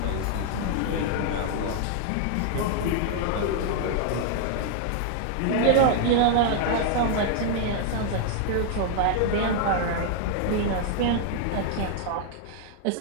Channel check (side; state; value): both; different; correlation 0.00